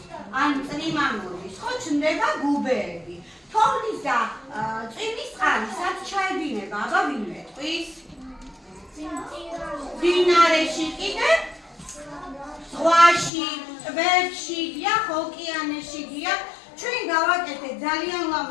ან წრიმა მოდის, ხო ჩნდება გუბეები. თოვლის და წვიმის წყალი სად ჩაედინება, აბა ვინ მეტყვის? მდინარეში კიდევ? ზღვაში, ტბებში, დიახ, ოკეანეში, დიახ. ჩვენ გავაკეთეთ ძალიან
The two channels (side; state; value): right; drops out; at 13.3 s